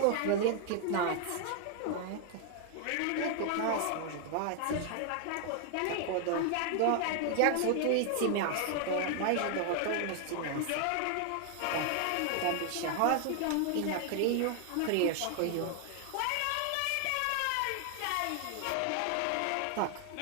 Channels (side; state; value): both; different; correlation 0.00